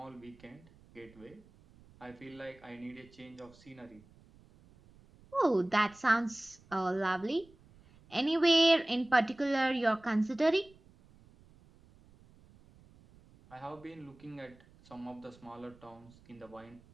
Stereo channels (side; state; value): right; noise; rumble, 26 dB below the sound